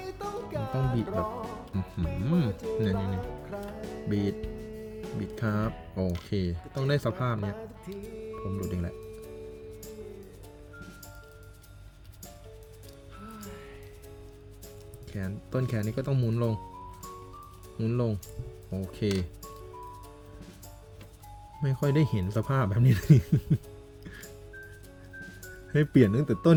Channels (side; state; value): both; identical; correlation 1.00